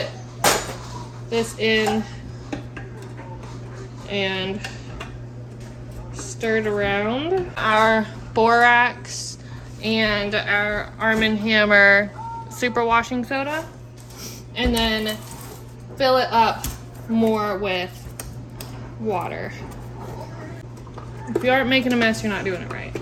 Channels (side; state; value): both; identical; correlation 1.00